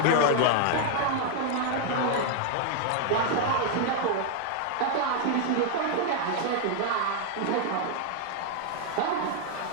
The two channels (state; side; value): different; both; correlation 0.00